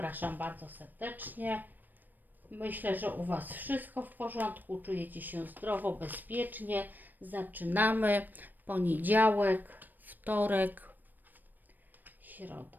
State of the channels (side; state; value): left; late; 0.089 ms